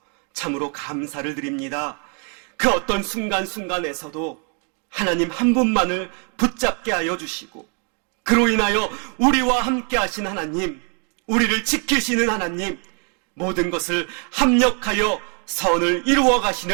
참으로 감사를 드립니다. 그 어떤 순간순간에서도 하나님 한 분만을 붙잡게 하여 주시고, 그로 인하여 우리와 함께 하신 하나님, 우리를 지키시는 하나님, 모든 것을 합력하여 선을 이루어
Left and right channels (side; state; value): left; quieter; 38.1 dB